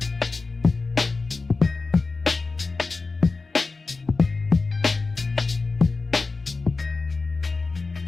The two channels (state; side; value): quieter; right; 3.9 dB